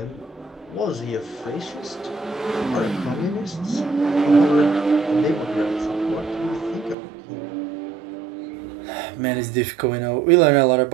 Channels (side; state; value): left; drops out; at 7.0 s